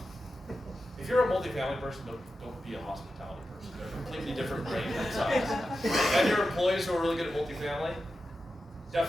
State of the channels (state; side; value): normal; both; correlation 0.91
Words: If you're a multifamily person, don't be a hospitality person. They're a completely different brain size. And your employees who are really good at multifamily,